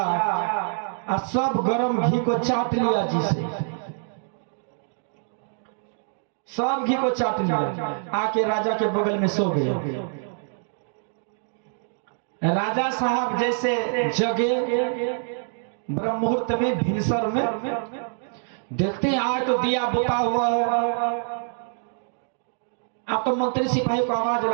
और सब गर्म घी को चाट लिया, जिसे सब घी को चाट लिया, आके राजा के बगल में सो गए। राजा साहब जैसे जगे ब्रह्म मुहूर्त में, भिनसर में, देखते हैं आज तो दिया बुता हुआ है। आप तो मंत्री सिपाही को आवाज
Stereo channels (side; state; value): left; silent; digital silence